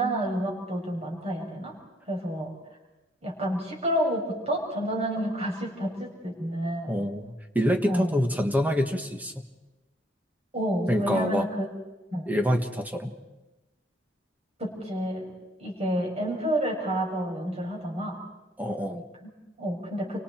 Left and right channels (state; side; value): normal; both; correlation 0.69